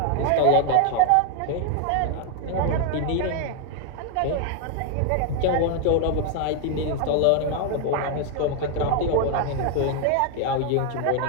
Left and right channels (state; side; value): different; both; correlation 0.00